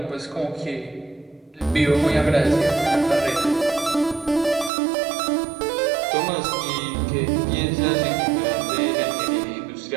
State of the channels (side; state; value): left; drops out; at 4.7 s